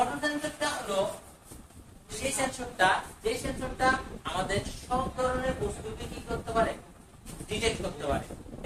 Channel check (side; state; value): both; identical; correlation 1.00